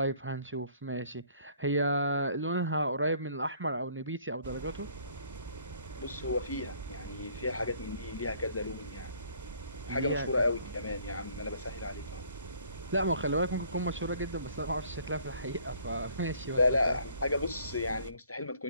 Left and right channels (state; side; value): inverted; both; correlation -0.58